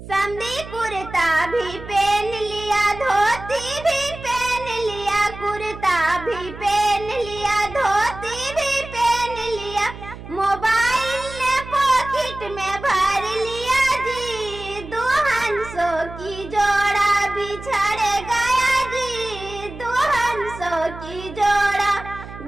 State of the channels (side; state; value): right; noise; hum, 13 dB below the sound